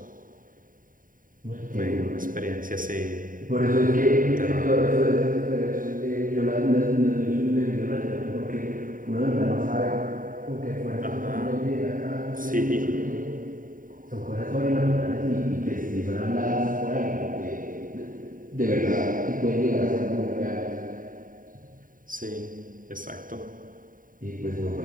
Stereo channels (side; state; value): left; late; 0.40 ms